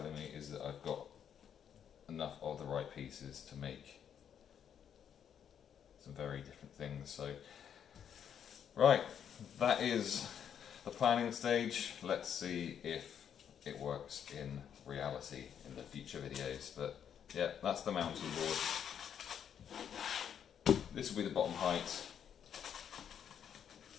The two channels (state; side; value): quieter; right; 8.6 dB